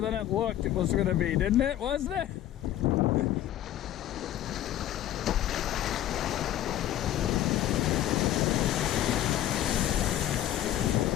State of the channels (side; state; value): right; quieter; 12.5 dB